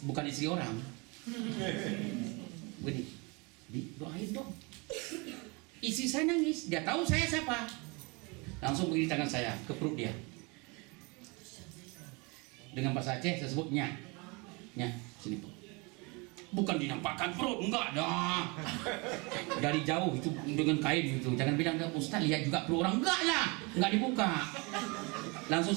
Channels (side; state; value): left; quieter; 28.7 dB